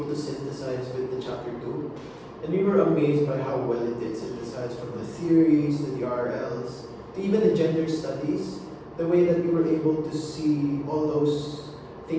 to synthesize with the chapter 2. And we were amazed by how well it did synthesize from the theories to the RLs to even the gender studies. The way that we were able to see all those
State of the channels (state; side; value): identical; both; correlation 1.00